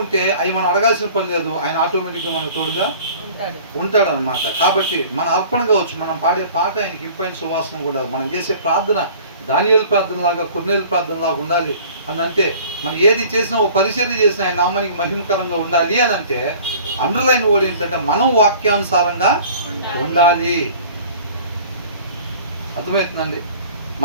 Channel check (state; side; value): inverted; both; correlation -0.47